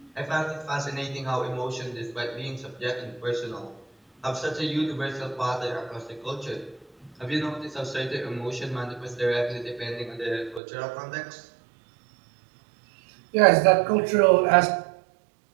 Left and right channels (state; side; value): drops out; left; at 10.6 s